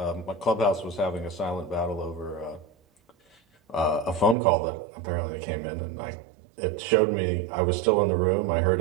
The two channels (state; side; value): drops out; left; at 4.4 s